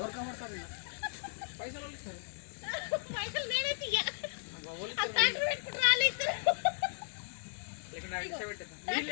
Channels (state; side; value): silent; right; 54 dB below the other